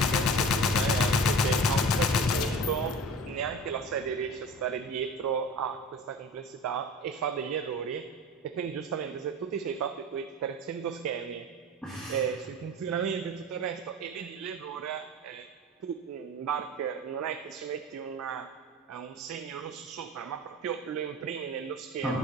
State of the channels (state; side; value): normal; both; correlation 0.35